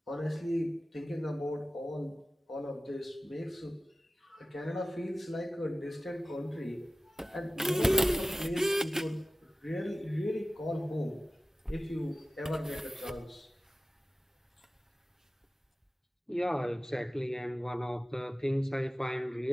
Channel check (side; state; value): both; normal; correlation 0.97